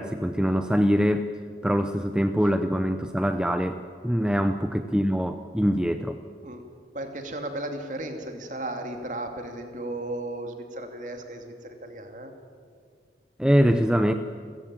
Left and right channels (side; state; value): both; normal; correlation 0.91